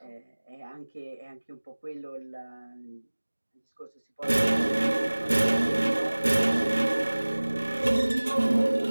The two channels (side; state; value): both; inverted; correlation -1.00